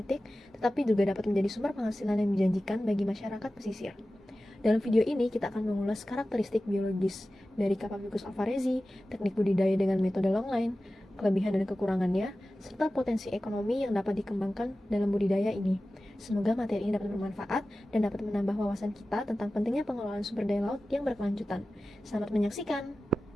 tetapi juga dapat menjadi sumber penghasilan yang menjanjikan bagi masyarakat pesisir. Dalam video ini, kita akan mengulas karakteristik biologis dari Capabicus alvarezi, teknik budidaya dengan metode longline, kelebihan dan kekurangannya, serta potensi ekonomi yang dapat dikembangkan dalam budidaya ini. Semoga materi ini dapat bermanfaat dan dapat menambah wawasan kita tentang pentingnya pengelolaan sumber daya laut yang berkelanjutan. Selamat menyaksikan!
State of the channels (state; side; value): normal; both; correlation 0.95